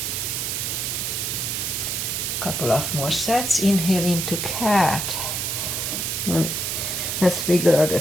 Couple of more sets. Inhale into cat. And let's wiggle the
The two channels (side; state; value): right; noise; hiss, 1 dB below the sound